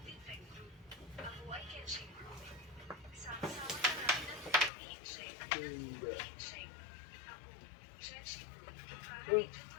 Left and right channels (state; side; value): drops out; right; at 4.7 s